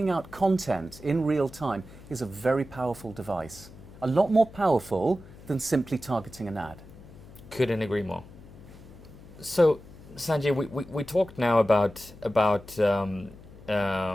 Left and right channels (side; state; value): left; noise; hum, 19 dB below the sound